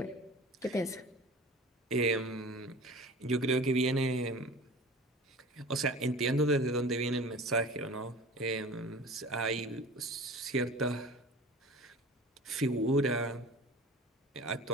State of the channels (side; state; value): both; normal; correlation 0.39